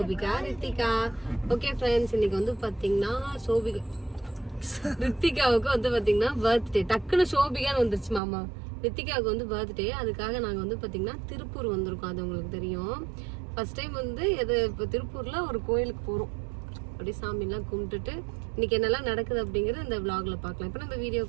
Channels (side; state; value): left; drops out; at 8.2 s